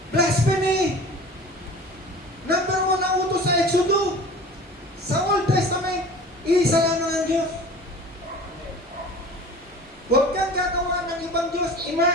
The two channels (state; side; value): normal; both; correlation 0.40